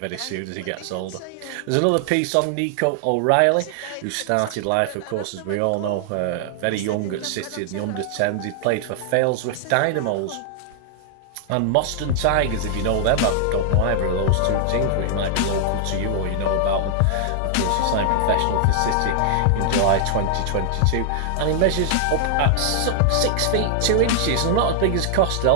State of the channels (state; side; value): different; both; correlation -0.01